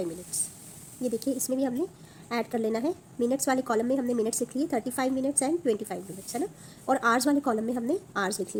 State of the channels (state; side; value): identical; both; correlation 1.00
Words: minutes. ये देखिए इसमें भी हमने ऐड कर लेना है. मिनट्स वाले कॉलम में हमने मिनट्स लिख लिए 35 minutes एंड 25 minutes, है ना, और आवर्स वाले कॉलम में हमने आवर्स लिख